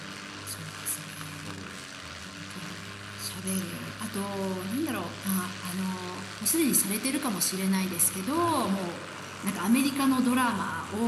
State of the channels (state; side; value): identical; both; correlation 1.00